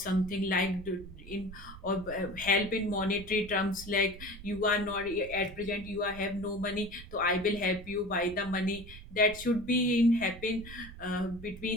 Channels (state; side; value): noise; right; rumble, 15 dB below the sound